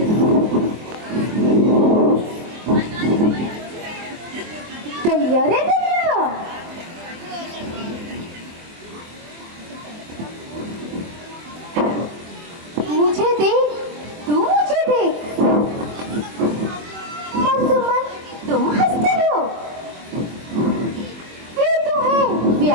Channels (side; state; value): left; late; 24 ms